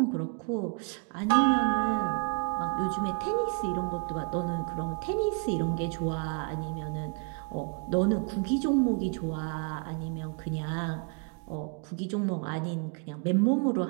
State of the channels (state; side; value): quieter; left; 34.1 dB